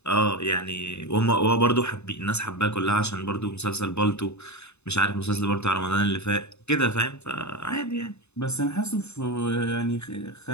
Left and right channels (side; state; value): right; late; 0.81 ms